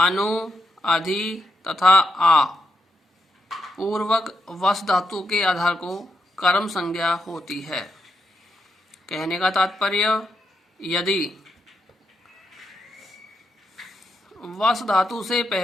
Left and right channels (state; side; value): normal; both; correlation 0.82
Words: अधि तथा आ पूर्वक वस धातु के आधार को कर्म संज्ञा होती है। कहने का तात्पर्य, यदि वस धातु से